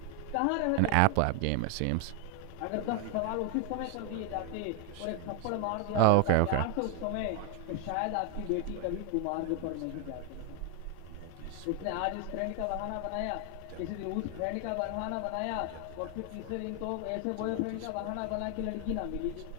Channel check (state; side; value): different; both; correlation 0.00